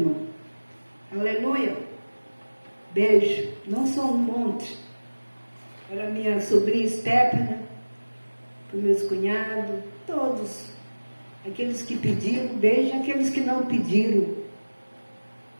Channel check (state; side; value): inverted; both; correlation -1.00